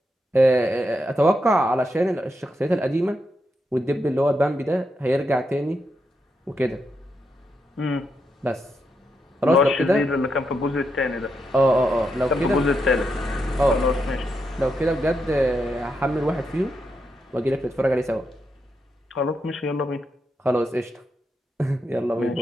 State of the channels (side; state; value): both; normal; correlation 0.83